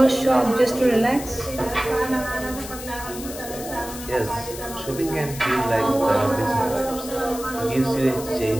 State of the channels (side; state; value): left; noise; hiss, 12 dB below the sound